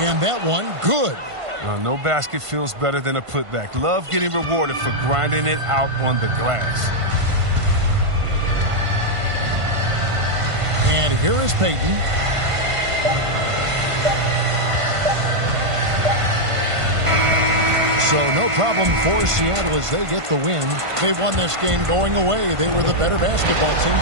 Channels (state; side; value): late; left; 1.5 ms